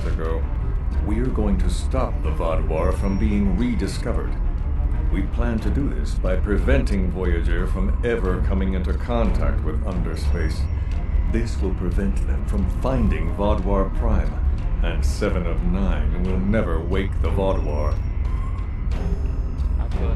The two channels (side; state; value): both; identical; correlation 1.00